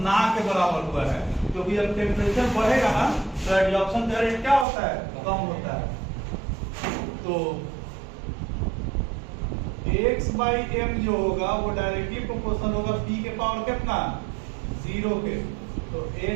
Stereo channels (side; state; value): left; drops out; at 4.7 s